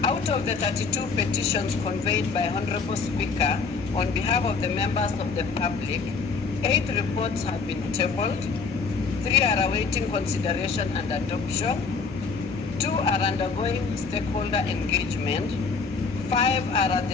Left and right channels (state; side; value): quieter; right; 5.0 dB